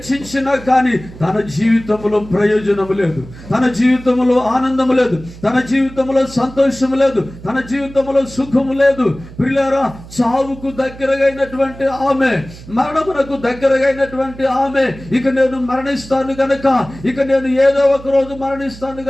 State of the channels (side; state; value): right; noise; hum, 17 dB below the sound